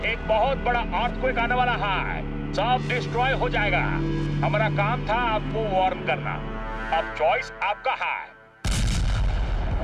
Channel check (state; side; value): identical; both; correlation 1.00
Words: एक बहुत बड़ा अर्थक्वेक आने वाला है। सब डिस्ट्रॉय हो जाएगा। हमारा काम था आपको वार्न करना। अब चॉइस आपका है।